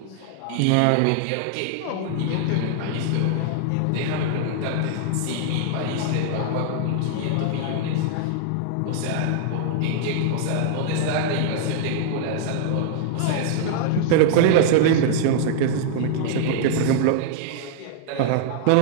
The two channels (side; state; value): both; different; correlation -0.01